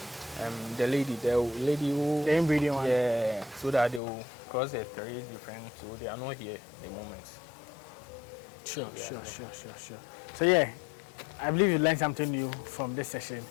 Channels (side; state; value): right; drops out; at 4.0 s